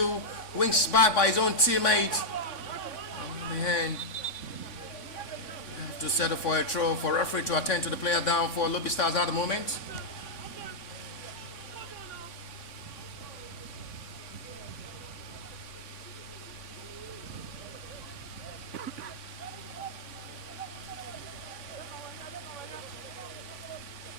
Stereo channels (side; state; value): right; late; 3.5 ms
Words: wings back by his own teammate. On the hand. You have to settle for a throw for referee to attend to the player down for Lobi Stars at the moment.